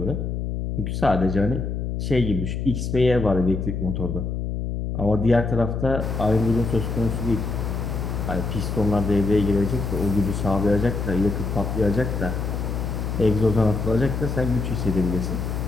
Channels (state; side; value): noise; left; hum, 3 dB below the sound